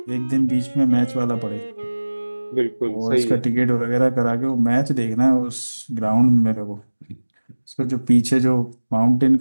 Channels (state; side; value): inverted; both; correlation -1.00